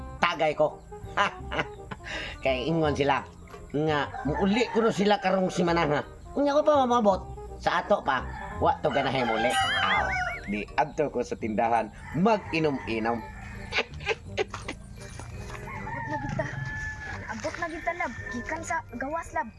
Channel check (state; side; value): identical; both; correlation 1.00